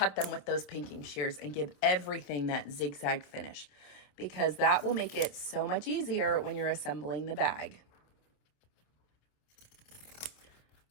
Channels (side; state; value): right; late; 27 ms